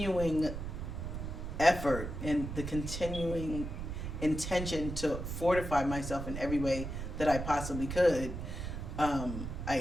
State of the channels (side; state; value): right; noise; rumble, 6 dB below the sound